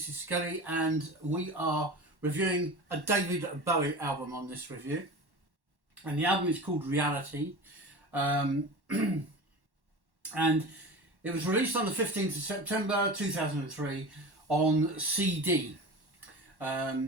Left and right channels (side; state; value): left; late; 1.1 ms